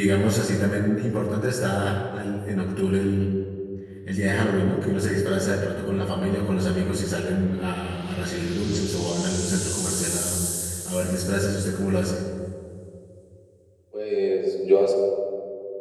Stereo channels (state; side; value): identical; both; correlation 1.00